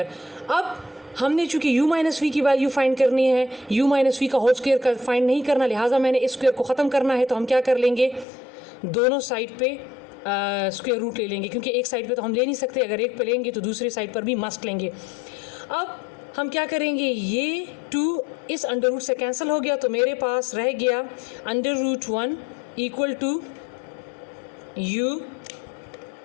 अब हमने चूँकि u - v की वैल्यू फाइंड करनी है, u - v का होल स्क्वायर का फाइंड नहीं करना, लिहाजा मैंने इस स्क्वायर को ख़त्म करना है। तो हम क्या कर लेंगे, दोनों साइड पे स्क्वायर रूट ले लेंगे, क्योंकि एक साइड पे तो हम ले नहीं सकते, अगर एक पे लेंगे तो दूसरी साइड पर भी मस्ट लेंगे। अब हम क्या करेंगे, ये 2 इस अंडर रूट से कैंसिल हो गया, तो मेरे पास रह गया √1 इक्वल टू u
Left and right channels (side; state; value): right; drops out; at 8.2 s